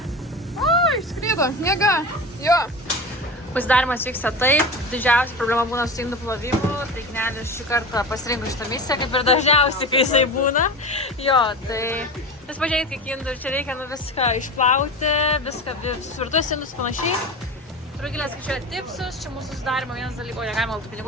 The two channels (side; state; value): both; normal; correlation 0.28